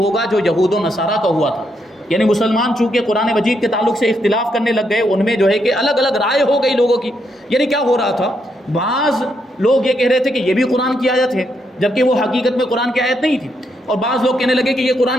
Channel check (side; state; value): both; normal; correlation 0.78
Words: جو یہود و نصارہ کا ہوا تھا۔ یعنی مسلمان چونکہ قرآن مجید کے تعلق سے اختلاف کرنے لگ گئے، ان میں جو ہے کہ الگ الگ رائے ہو گئی لوگوں کی۔ یعنی کیا ہو رہا تھا، بعض لوگ یہ کہہ رہے تھے کہ یہ بھی قرآن کی آیت ہے جبکہ وہ حقیقت میں قرآن کی آیت نہیں تھی، اور بعض لوگ کہنے لگے کہ یہ